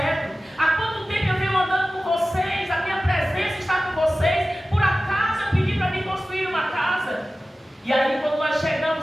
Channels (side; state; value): both; normal; correlation 0.95